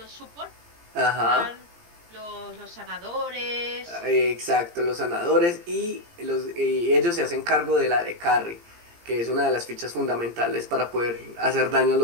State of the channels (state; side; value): late; left; 17 ms